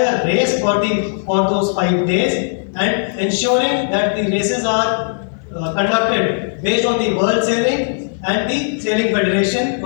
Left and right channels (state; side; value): silent; right; 68 dB below the other